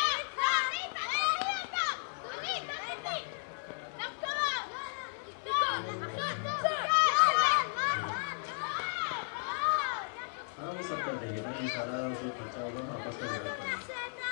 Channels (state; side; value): silent; right; digital silence